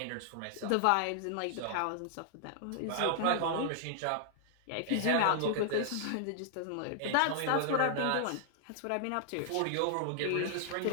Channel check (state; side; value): different; both; correlation -0.01